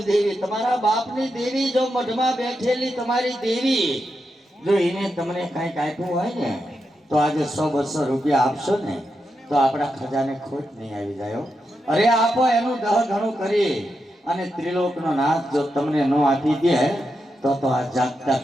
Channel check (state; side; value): normal; both; correlation 0.86